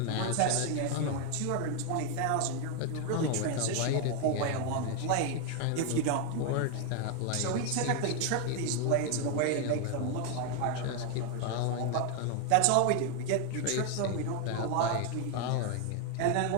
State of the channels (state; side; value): different; both; correlation 0.01